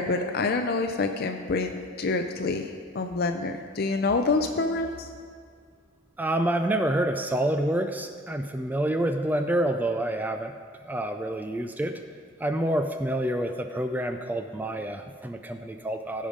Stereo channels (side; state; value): both; normal; correlation 0.51